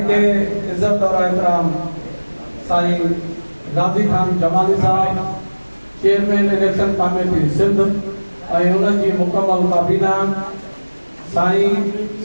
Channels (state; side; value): inverted; both; correlation -1.00